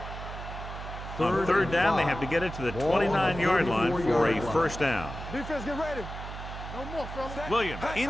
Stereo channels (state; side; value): noise; right; hum, 9 dB below the sound